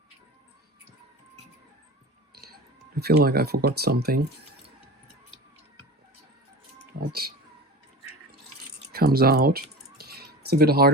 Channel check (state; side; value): normal; both; correlation 0.33